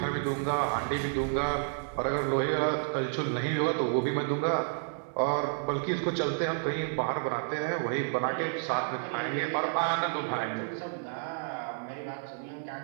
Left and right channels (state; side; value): silent; left; digital silence